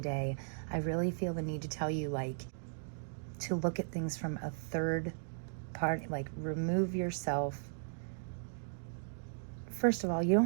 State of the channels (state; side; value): silent; left; digital silence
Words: I really feel the need to tell you, like, to look at things from a third party, like remove yourself. First of all, you